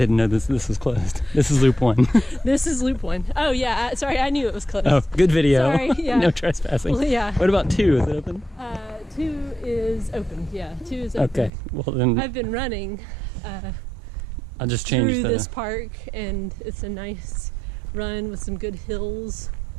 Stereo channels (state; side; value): drops out; left; at 11.5 s